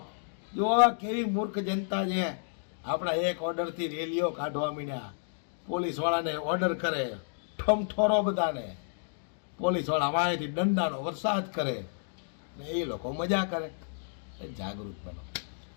કેવી મૂર્ખ જનતા છે. આપણા એક ઓર્ડરથી રેલીઓ કાઢવા માંડ્યા, પોલીસવાળાને ઓર્ડર કરે, ઠમઠોરો બધાને, પોલીસવાળા વાંયથી દંડાનો વરસાદ કરે ને એ લોકો મજા કરે. જાગૃત બનો.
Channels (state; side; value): silent; right; digital silence